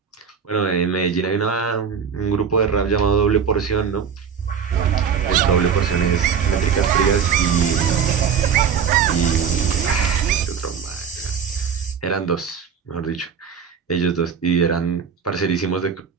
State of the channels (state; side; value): quieter; left; 6.9 dB